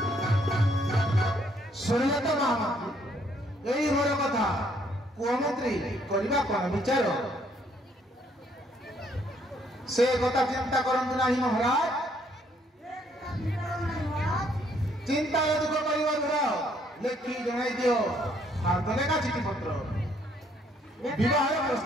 କରିବା କ'ଣ ବିଚାର से কথা চিন্তা করন্তু नाही महाराज चिंता दुख परिवार लेखी जणाई दियो हाथ लेखा चिठी पत्र विवाह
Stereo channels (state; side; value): normal; both; correlation 0.67